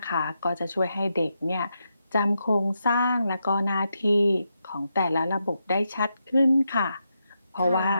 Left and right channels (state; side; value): inverted; both; correlation -0.85